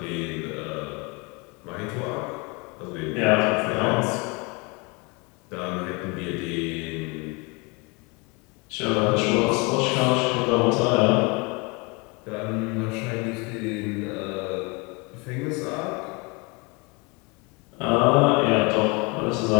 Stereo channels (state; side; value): quieter; right; 28.8 dB